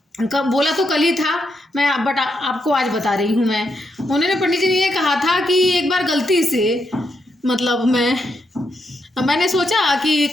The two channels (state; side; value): normal; both; correlation 0.81